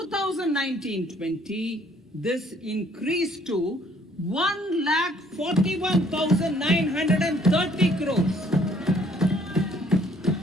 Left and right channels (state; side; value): normal; both; correlation 0.62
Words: this increased to 1,41,930 crores.